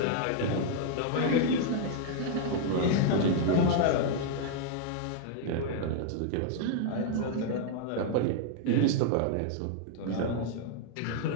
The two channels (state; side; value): different; both; correlation 0.00